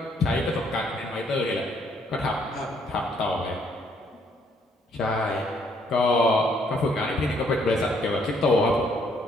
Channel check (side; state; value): both; normal; correlation 0.67